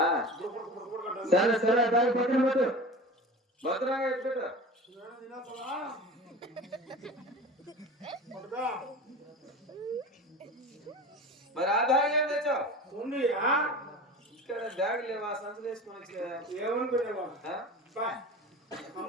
సరే సరే దాని పక్కన పెట్టు, భద్రంగా ఎత్తుపెట్టు. మరి ఆ బ్యాగ్ ఏం తెచ్చావు? ఉంది ఇక్కడ బ్యాగ్ లేవా? సంచులు వేసుకొని ఏమనుకునేవా?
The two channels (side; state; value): both; normal; correlation 0.33